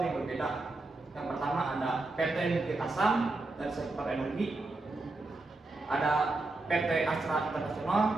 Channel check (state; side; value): quieter; left; 3.1 dB